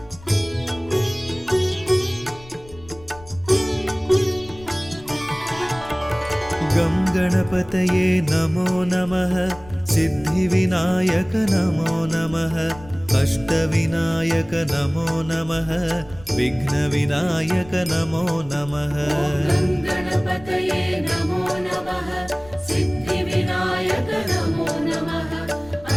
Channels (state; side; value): noise; left; rumble, 19 dB below the sound